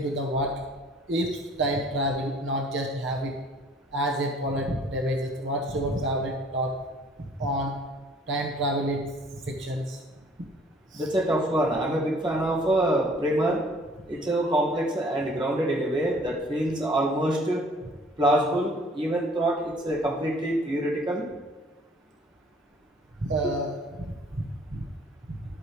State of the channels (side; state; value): both; normal; correlation 0.55